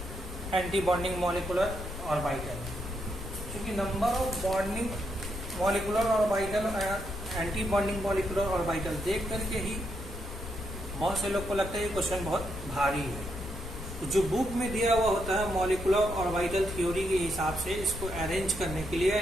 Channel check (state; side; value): noise; left; rumble, 9 dB below the sound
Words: anti bonding molecular orbital. क्योंकि number of bonding molecular orbital और anti bonding molecular orbital देख करके ही बहुत से लोग को लगता है ये क्वेश्चन बहुत भारी है। तो जो बुक में दिया हुआ होता है मॉलिक्यूलर ऑर्बिटल थ्योरी के हिसाब से इसको अरेंज करने के लिए